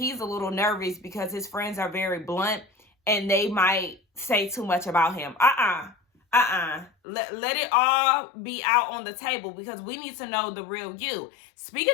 a little nervous because his friends are very blunt and they might say too much about him. Let it all be out on the table, because we need to know the real you.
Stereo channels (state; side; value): drops out; right; at 6.9 s